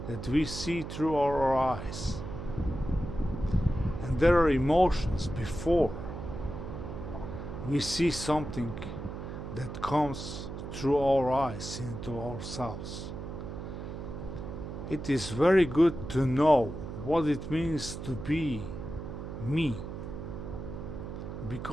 that we see through our eyes, and there are emotions before we see something that comes through our eyes into ourselves. It is very good to know what it means to be me,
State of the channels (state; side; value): noise; right; hum, 8 dB below the sound